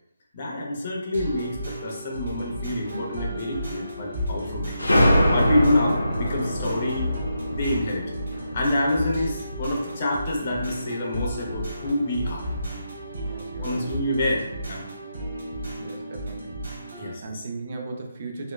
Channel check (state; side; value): inverted; both; correlation -0.83